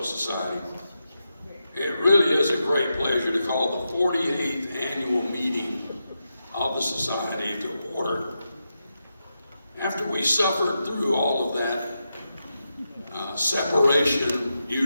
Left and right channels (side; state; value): both; inverted; correlation -0.87